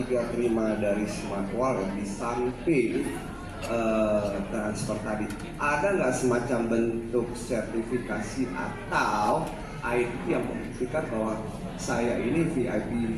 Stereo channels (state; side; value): identical; both; correlation 1.00